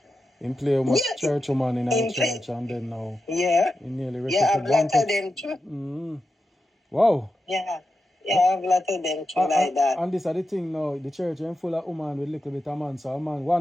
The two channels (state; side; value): normal; both; correlation 0.90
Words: In play with church woman in our church, and then now he nearly I've lot of them too. Wow. Yeah, I've lot of them too like that. And this is the thing now, the church is full of women with little bit of man. So